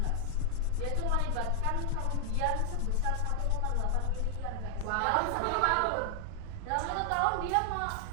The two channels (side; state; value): both; different; correlation 0.00